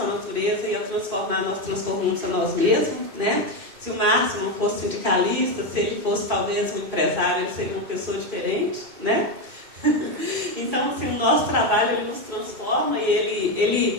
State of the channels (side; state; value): left; late; 2.1 ms